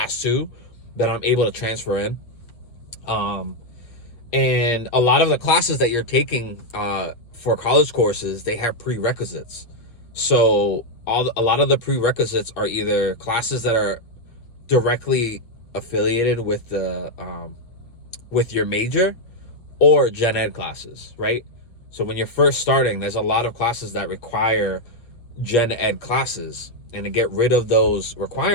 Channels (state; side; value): late; right; 8.2 ms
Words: 2 that I'm able to transfer in. And a lot of the classes that you're taking for college courses, they have prerequisites. So a lot of the prerequisites are either classes that are directly affiliated with the with your major, or gen ed classes, right? So when you're first starting, there's a lot of classes that require gen ed classes, and to get rid of those